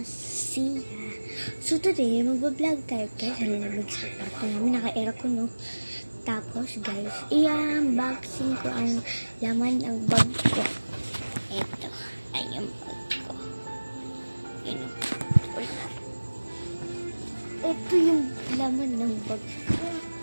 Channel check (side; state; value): both; inverted; correlation -1.00